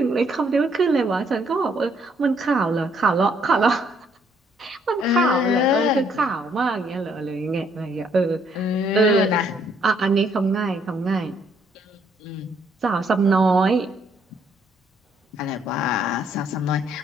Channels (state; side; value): normal; both; correlation 0.68